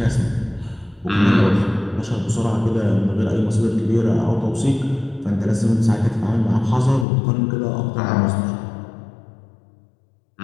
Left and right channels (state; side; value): drops out; right; at 7.1 s